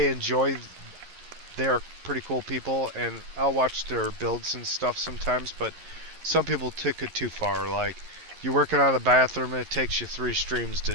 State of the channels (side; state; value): left; late; 11 ms